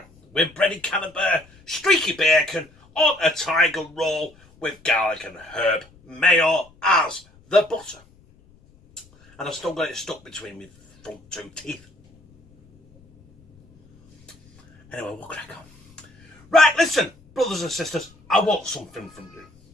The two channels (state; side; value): noise; left; rumble, 29 dB below the sound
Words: with breaded Camembert, Steaky Bacon on a Tiger Roll with garlic and herb mayo as the butter. And I've still got it stuck between my front 2 teeth. Anyway, we'll crack on. Right, listen, brothers and sisters, I want something from you.